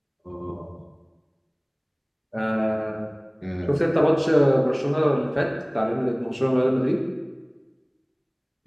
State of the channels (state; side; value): identical; both; correlation 1.00